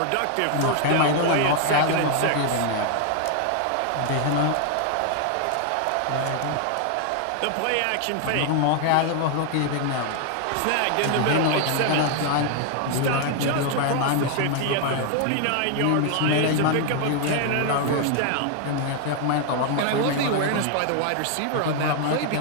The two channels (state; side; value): different; both; correlation 0.00